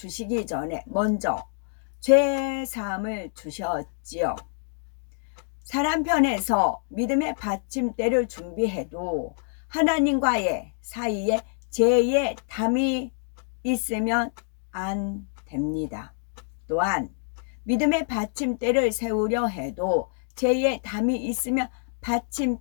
전에 먼저 죄 사함을 주셨지요. 사람 편에서 믿음의 받침대를 준비해도 하나님과의 사이에 죄의 담이 있으면 안 됩니다. 또한 믿음의 받침대를 세우려 해도 죄의 담이 있으면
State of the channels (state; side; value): silent; right; digital silence